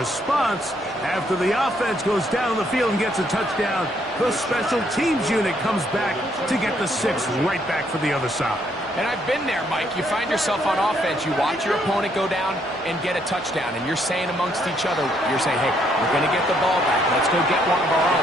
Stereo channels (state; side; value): normal; both; correlation 0.71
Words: After the offense goes down the field and gets a touchdown, the special teams unit comes back to get the 6 right back for the other side. And I've been there, Mike. You find yourself on offense, you watch your opponent go down and get a touchdown, and you're saying amongst each other, you're saying, hey, we're going to get the ball back. Let's go get one of our